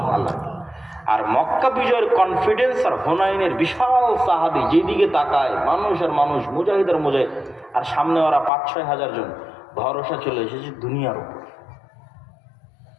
আল্লাহ। আর মক্কা বিজয়ের কনফিডেন্স আর হুনাইনের বিশাল সাহাবী, যেদিকে তাকায় মানুষ আর মানুষ, মুজাহিদ আর মুজাহিদ, আর সামনে ওরা 5-6 হাজার জন, ভরসা চলে এসেছে দুনিয়ার উপর।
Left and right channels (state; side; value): drops out; right; at 8.5 s